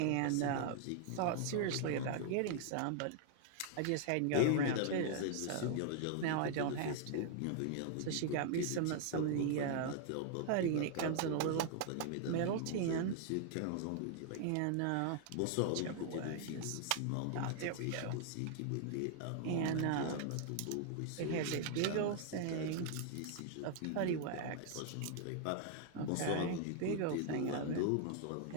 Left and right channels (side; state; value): both; different; correlation 0.00